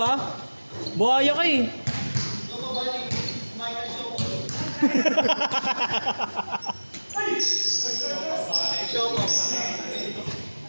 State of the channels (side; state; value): both; inverted; correlation -1.00